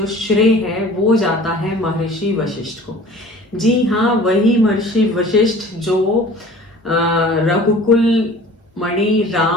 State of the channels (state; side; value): normal; both; correlation 0.45